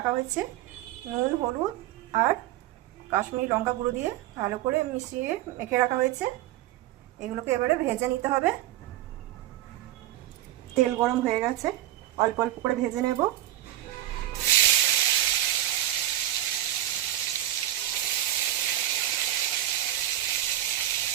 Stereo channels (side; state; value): left; quieter; 13.7 dB